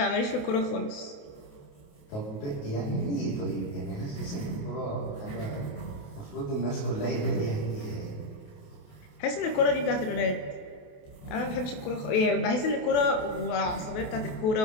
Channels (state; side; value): late; right; 28 ms